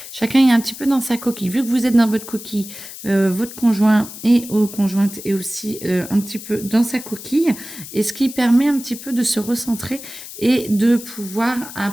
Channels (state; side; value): noise; left; hiss, 13 dB below the sound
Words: chacun est un petit peu dans sa coquille. Vu que vous êtes dans votre coquille, votre conjoint et ou conjointe est aussi un petit peu dans sa coquille. Et ce qui permet un petit peu de se recentrer et de pouvoir